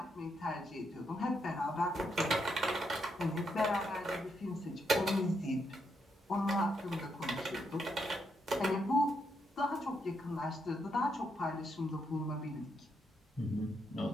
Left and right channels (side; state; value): both; normal; correlation 0.79